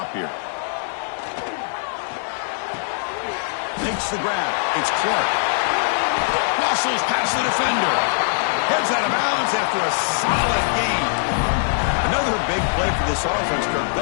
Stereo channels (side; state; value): right; silent; digital silence